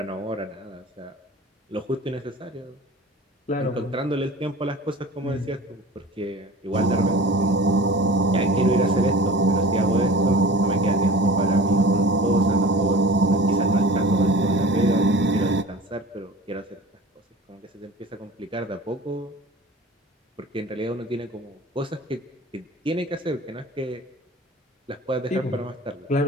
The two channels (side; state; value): both; normal; correlation 0.40